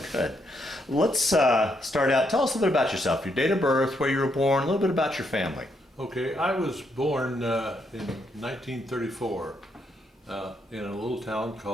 Good. Let's start out. Tell us a little bit about yourself, your date of birth, where you were born, a little bit about your family. Okay, I was born in 1934 in a little town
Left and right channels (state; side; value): normal; both; correlation 0.76